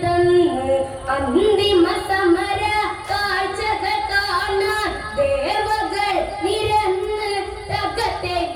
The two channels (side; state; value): both; identical; correlation 1.00